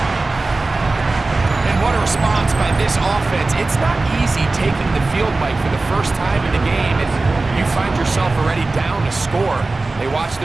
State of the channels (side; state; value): left; quieter; 3.4 dB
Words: And what a response by this offense. It's not easy taking the field, Mike, for the first time in the game, and you find yourself already down to score. They watch